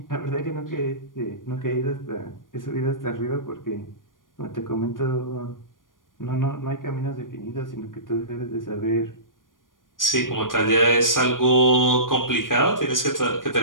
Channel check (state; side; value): late; right; 0.90 ms